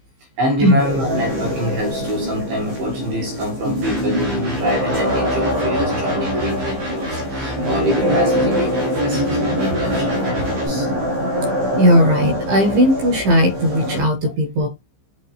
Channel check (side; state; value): left; late; 15 ms